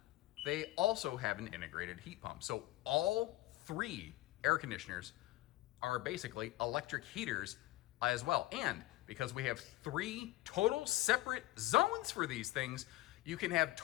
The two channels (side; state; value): right; quieter; 17.5 dB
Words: they also have an integrated heat pump. So all 3 air conditioners are basically electric heaters as well. And because we have 3 total separate zones for these things, you can have